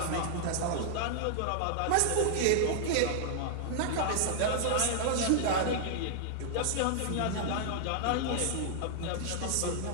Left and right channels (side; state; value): both; different; correlation -0.01